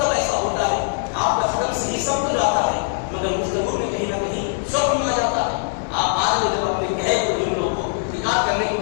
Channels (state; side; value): silent; right; digital silence